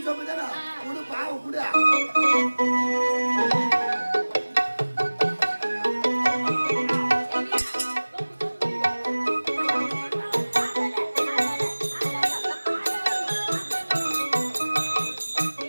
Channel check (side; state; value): both; inverted; correlation -1.00